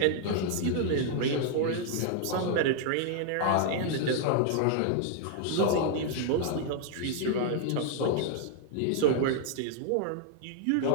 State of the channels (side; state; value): both; different; correlation 0.00